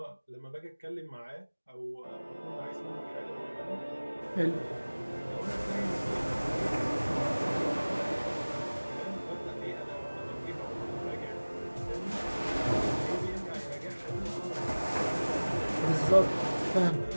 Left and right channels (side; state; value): both; inverted; correlation -1.00